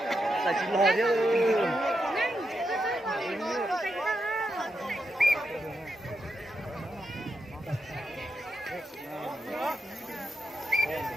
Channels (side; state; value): both; normal; correlation 0.85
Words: Tại chị lò chứ.